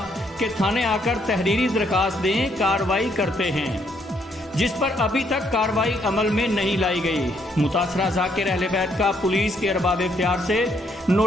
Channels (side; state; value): both; normal; correlation 0.71